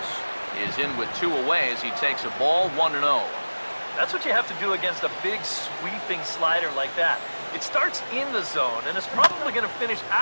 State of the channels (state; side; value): inverted; both; correlation -1.00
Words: is in with 2 away as he takes a ball 1-0. That's what you have to do against a big sweeping slider like that. It starts in the zone, and it's probably going to finish